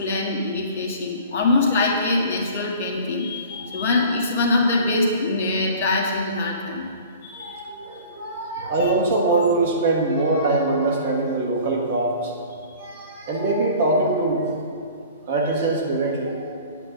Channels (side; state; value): both; inverted; correlation -0.44